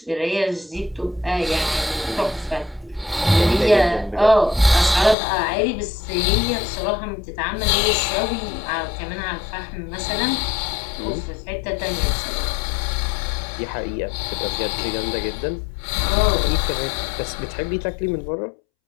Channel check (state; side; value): drops out; right; at 5.2 s